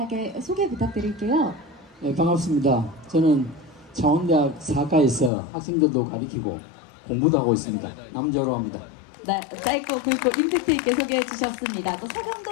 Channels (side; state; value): right; drops out; at 5.3 s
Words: 소개 부탁드릴게요. 네, 반갑습니다. 저는 창원대학 사과에서 학생들도 가르치고 공부도 하고 있습니다. 남재호로 합니다. 네, 짧고 굵고 임팩트 있게 소개해 주셨습니다. 또